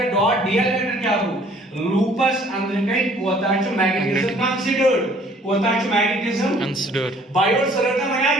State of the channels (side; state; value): both; normal; correlation 0.57